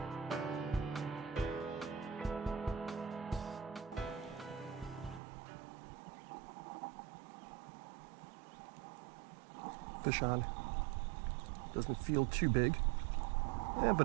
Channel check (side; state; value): left; drops out; at 5.2 s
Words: Fish on. Doesn't feel too big. Yeah, but